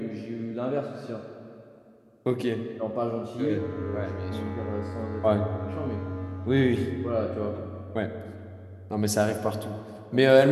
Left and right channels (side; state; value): both; identical; correlation 1.00